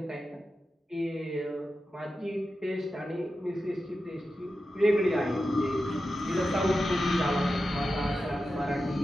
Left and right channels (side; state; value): both; normal; correlation 0.91